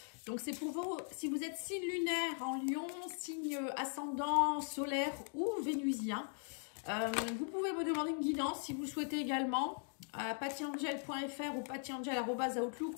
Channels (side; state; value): right; silent; 51 dB below the other